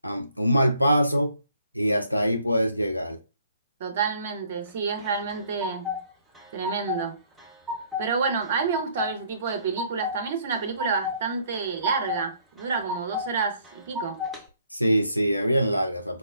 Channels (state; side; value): inverted; both; correlation -0.64